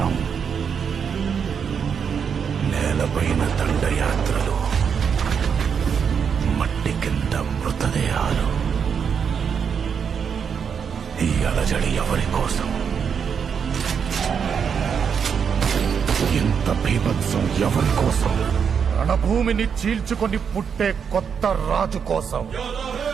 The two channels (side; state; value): left; quieter; 6.9 dB